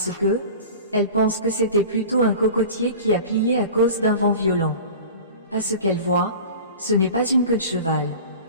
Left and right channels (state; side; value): inverted; both; correlation -0.38